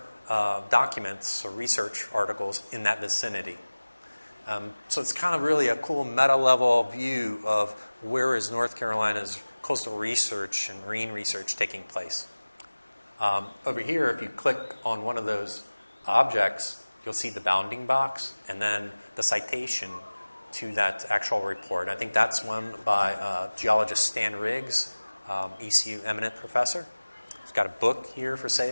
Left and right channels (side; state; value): both; inverted; correlation -1.00